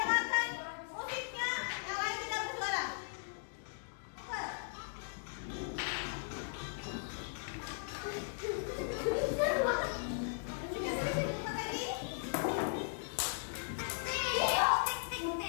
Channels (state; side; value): silent; right; digital silence